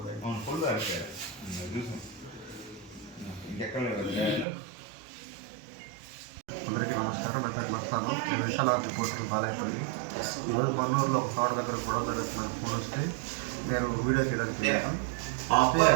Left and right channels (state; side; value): drops out; left; at 4.5 s